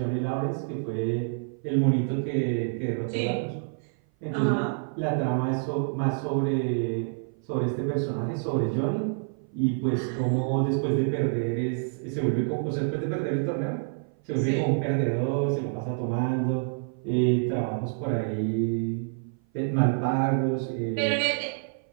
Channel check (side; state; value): left; silent; 56 dB below the other